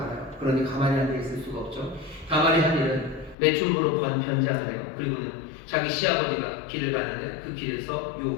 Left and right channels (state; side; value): drops out; right; at 3.4 s